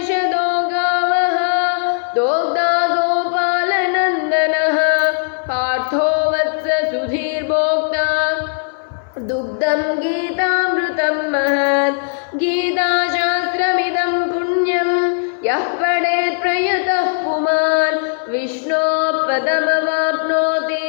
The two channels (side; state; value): right; silent; 60 dB below the other